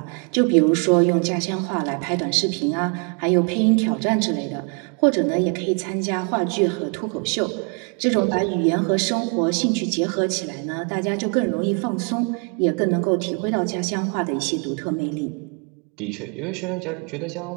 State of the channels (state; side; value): quieter; left; 36.5 dB